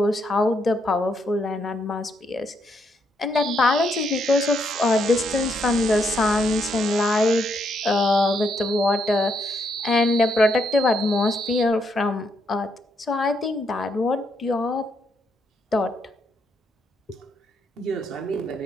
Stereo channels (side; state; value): both; normal; correlation 0.76